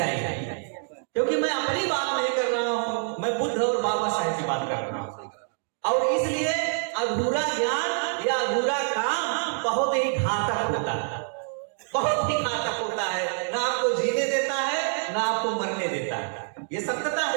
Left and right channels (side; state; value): left; silent; 59 dB below the other